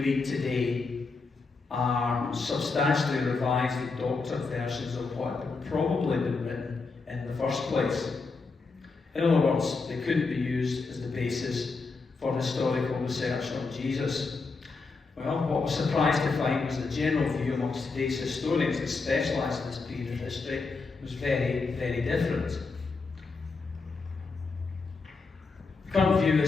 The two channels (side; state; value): right; quieter; 4.2 dB